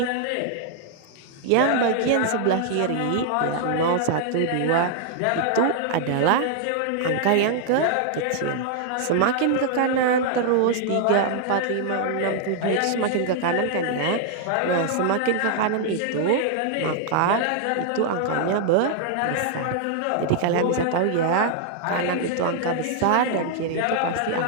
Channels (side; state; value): both; different; correlation -0.01